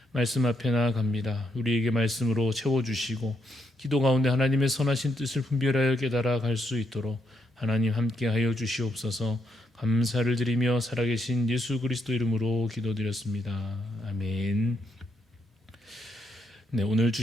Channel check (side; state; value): both; normal; correlation 0.79